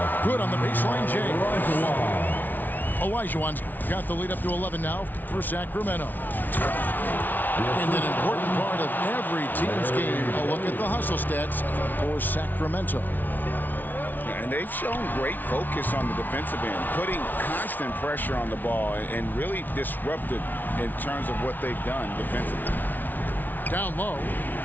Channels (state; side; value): late; right; 0.085 ms